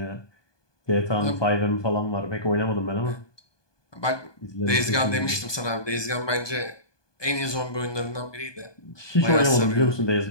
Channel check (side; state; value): right; late; 1.2 ms